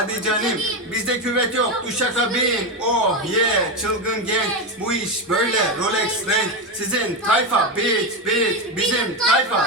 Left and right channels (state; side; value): normal; both; correlation 0.13